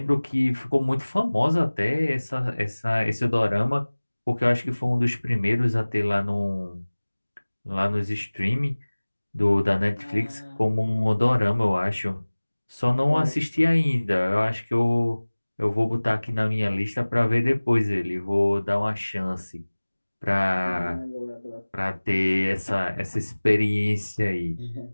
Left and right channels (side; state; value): both; inverted; correlation -1.00